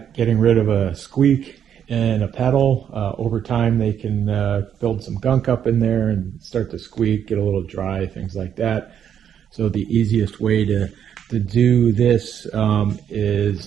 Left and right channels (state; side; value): quieter; left; 8.9 dB